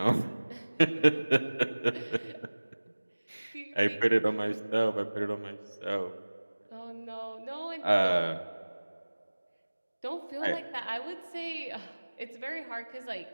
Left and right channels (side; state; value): both; inverted; correlation -1.00